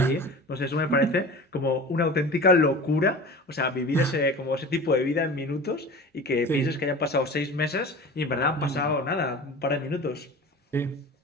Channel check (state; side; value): normal; both; correlation 0.37